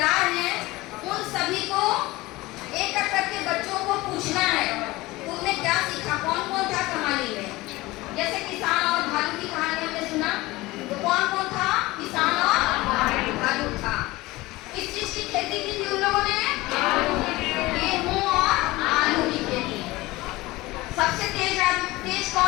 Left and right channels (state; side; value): quieter; right; 20.0 dB